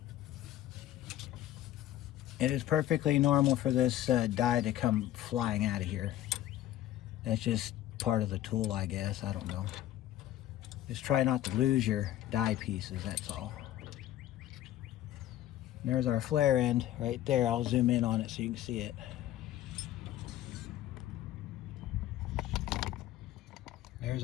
it is perfectly normal for this die to come flying out of here. That's just part of the tool, I guess. I don't know. Just try not to lose your die pieces, that's all. And there's our flare end right there. I'll zoom in on it so you can see it. There's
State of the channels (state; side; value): quieter; right; 13.3 dB